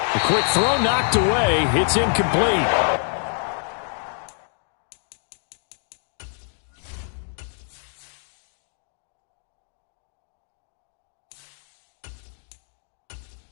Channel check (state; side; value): silent; right; digital silence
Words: quick throw knocked away. It's incomplete.